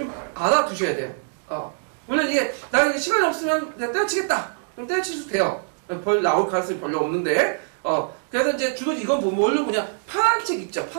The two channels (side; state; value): left; silent; digital silence